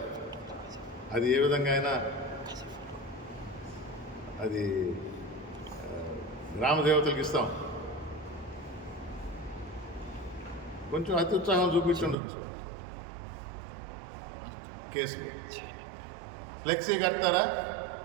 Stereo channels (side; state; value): left; drops out; at 12.2 s